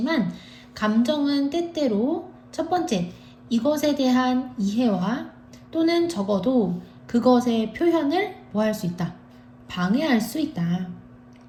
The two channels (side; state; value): both; identical; correlation 1.00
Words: 감정은 때때로 첫 번째, 이것에 대한 이해와 또는 적어도 그것의 표현을 뭐 할 수 있다? 방해할 수 있다.